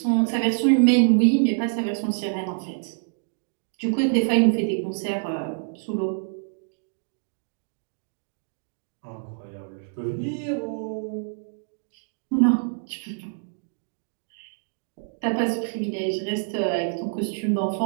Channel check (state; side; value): silent; left; digital silence